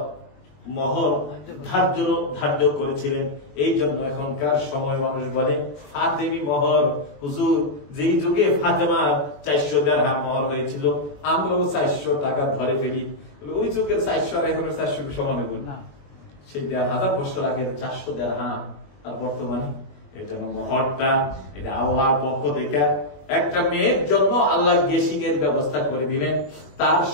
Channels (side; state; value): right; late; 21 ms